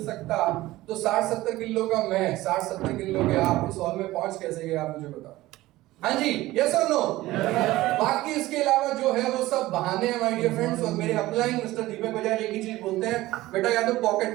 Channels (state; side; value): quieter; left; 17.4 dB